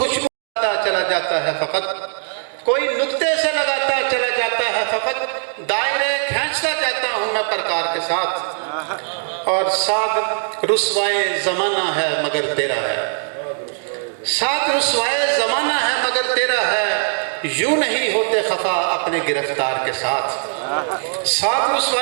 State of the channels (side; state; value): left; silent; digital silence